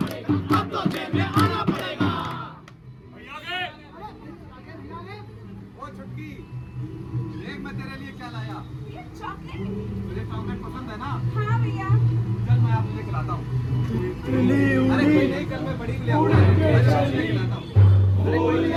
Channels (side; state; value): both; identical; correlation 1.00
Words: अब तो जेब में आना पड़ेगा। ओ छुटकी, देख मैं तेरे लिए क्या लाया। ये चॉकलेट। तुझे चॉकलेट पसंद है ना? हाँ भैया। चल मैं आपको खिलाता हूँ। अरे कोई नहीं, कल मैं बड़ी के लिए आऊंगा, खिलाता हूँ। फूल